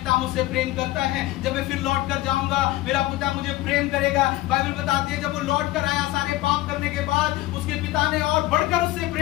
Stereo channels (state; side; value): quieter; right; 17.0 dB